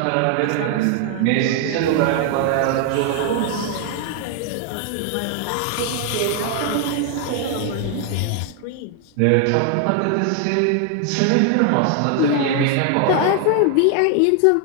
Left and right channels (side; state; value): both; different; correlation 0.00